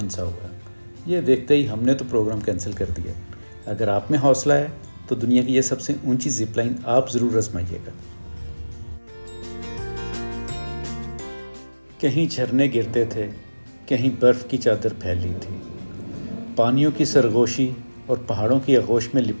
हुआ है। ये देखते ही हमने तो प्रोग्राम कैंसिल कर दिया। अगर आप में हौसला है तो दुनिया की यह सबसे ऊँची ज़िप-लाइन आप ज़रूर आजमाइएगा। कहीं झरने गिरते थे, कहीं बर्फ़ की चादर फैली थी। पानियों की सरगोशी और पहाड़ों की आगोश में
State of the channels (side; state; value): both; inverted; correlation -1.00